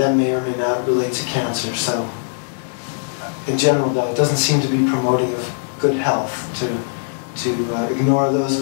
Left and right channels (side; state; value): right; silent; 63 dB below the other